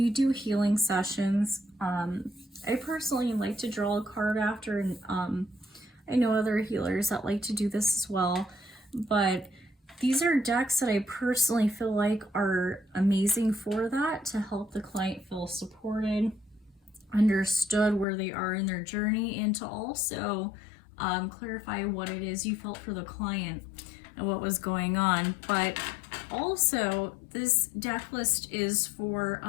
do healing sessions, I personally like to draw a card after, and I know other healers that like to do this as well, but these are decks that I personally feel like are amazing for that, to help the client feel supported, understood where they are in their journey, and to also clarify what it is you felt for the client and what was going on. But also, this deck list is for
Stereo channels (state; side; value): drops out; right; at 18.1 s